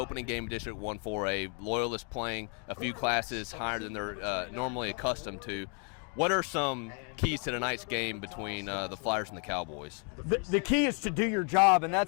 game of District 1-4A. Loyola's playing a few classes higher than they're normally accustomed to. What are some keys to tonight's game between the Flyers and the Cowboys? The key is to do your job, and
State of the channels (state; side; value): quieter; right; 38.7 dB